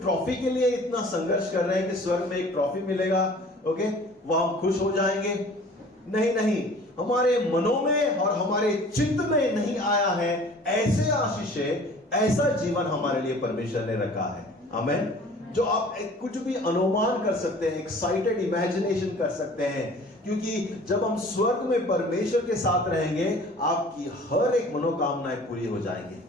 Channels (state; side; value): normal; both; correlation 0.48